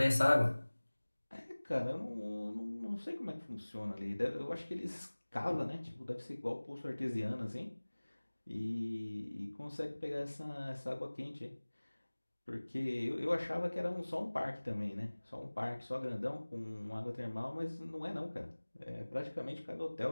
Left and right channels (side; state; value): both; inverted; correlation -1.00